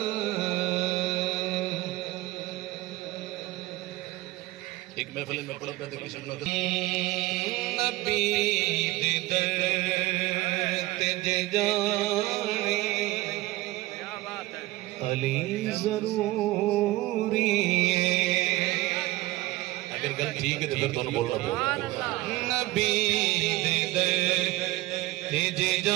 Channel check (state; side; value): quieter; left; 19.0 dB